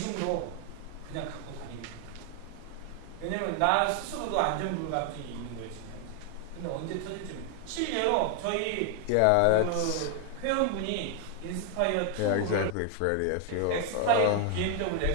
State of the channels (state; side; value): different; both; correlation 0.00